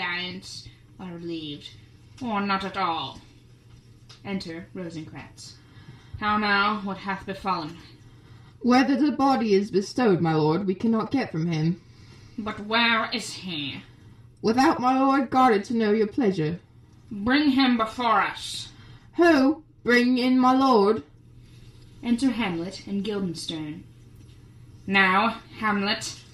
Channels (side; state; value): both; identical; correlation 1.00